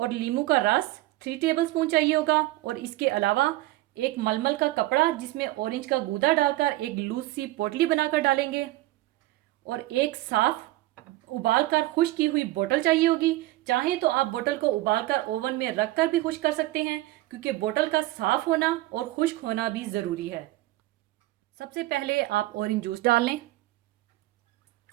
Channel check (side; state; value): left; quieter; 17.9 dB